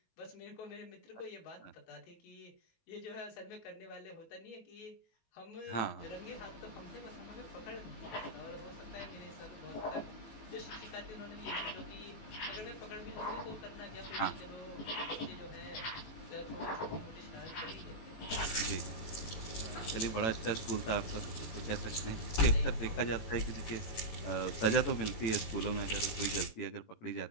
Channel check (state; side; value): late; right; 18 ms